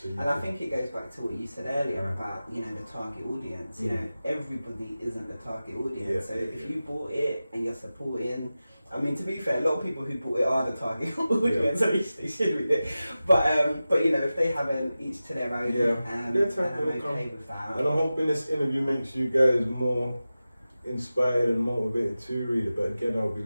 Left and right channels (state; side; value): inverted; both; correlation -0.95